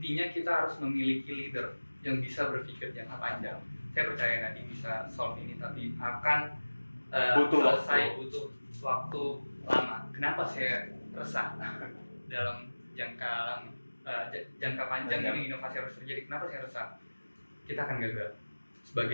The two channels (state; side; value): inverted; both; correlation -1.00